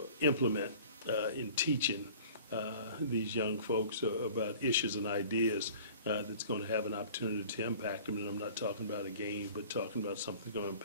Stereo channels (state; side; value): inverted; both; correlation -0.46